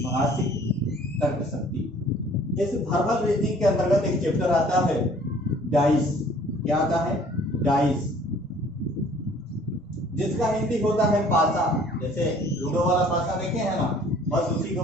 शक्ति। इस वर्बल रीजनिंग के अंतर्गत एक चैप्टर आता है डाइस। क्या आता है? डाइस, जिसका हिंदी होता है पासा। जैसे लूडो वाला पासा देखे हैं ना, बस उसी को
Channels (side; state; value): both; normal; correlation 0.54